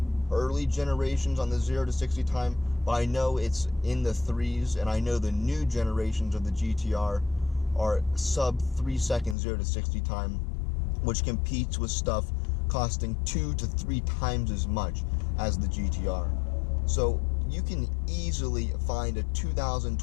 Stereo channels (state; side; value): drops out; right; at 9.3 s